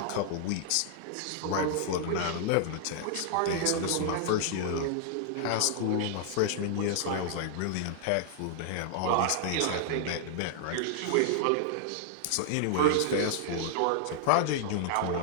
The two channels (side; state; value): both; different; correlation -0.01